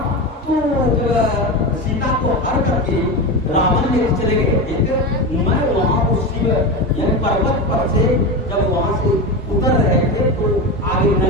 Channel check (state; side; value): normal; both; correlation 0.20